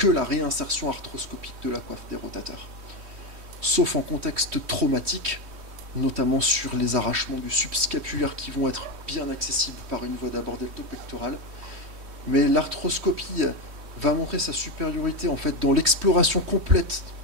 la réinsertion arthroscopique de la coiffe des rotateurs. Sauf en contexte traumatique, notamment sur les arrachements du subscapulaire qui vont être bien accessibles par une voie d'abord deltopectorale. Mais l'arthroscopie va montrer sa supériorité en fait dans l'exploration complète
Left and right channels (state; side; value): late; left; 3.1 ms